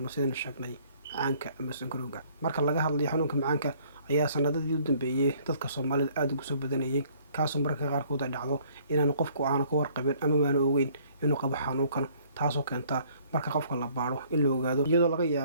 sidaan sheegnay macaanka ama sonkorowga. Marka laga hadlayo xanuunka macaanka ayaa sanadadii u dambeeyay dadka Soomaalida aad ugu soo badanayay kaasoo marka qaarkood ay dhacdo inaan qofku aan ka warqabin ama aan ogeyn inuu qabo xanuunkan, taasoo keenta marka qofka la baaro in la ogaado iyadoo laga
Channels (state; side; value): inverted; both; correlation -0.59